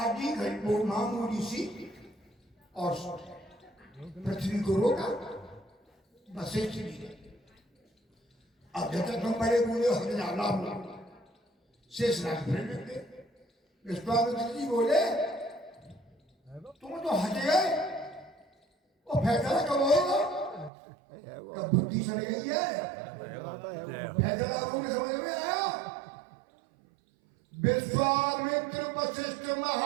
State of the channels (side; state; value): left; drops out; at 20.7 s